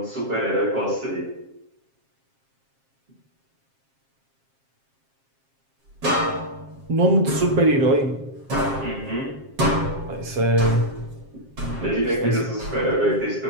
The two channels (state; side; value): late; left; 7.4 ms